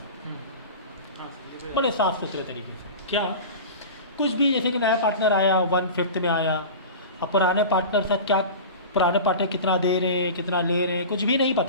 बड़े साफ सुथरे तरीके से। क्या कुछ भी, जैसे कि नया पार्टनर आया 1/5 में आया, अब पुराने पार्टनर साथ क्या, पुराने पार्टनर कितना दे रहे हैं कितना ले रहे हैं कुछ भी नहीं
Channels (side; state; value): both; inverted; correlation -0.33